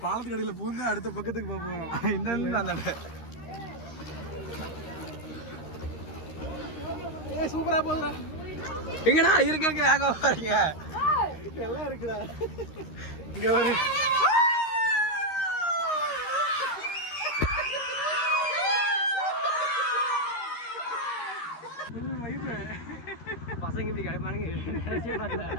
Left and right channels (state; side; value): late; right; 13 ms